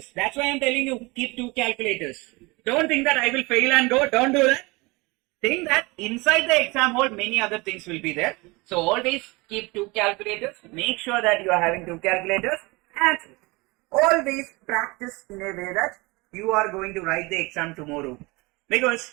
That's why I'm telling you, keep 2 calculators. Don't think that I will fail and go. Don't do that. Think that inside the exam hall, many other things will be there. So always keep 2 calculators. Make sure that you are having 2 calculators. And always practice in a way that you are going to write the exam tomorrow.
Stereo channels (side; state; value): left; quieter; 24.8 dB